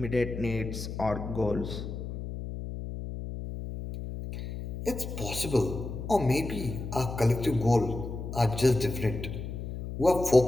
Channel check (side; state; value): left; noise; hum, 7 dB below the sound